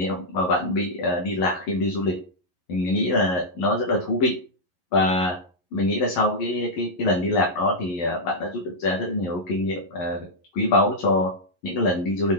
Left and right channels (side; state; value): right; late; 11 ms